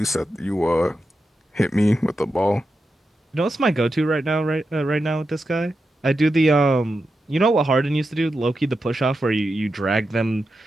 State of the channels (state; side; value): normal; both; correlation 0.89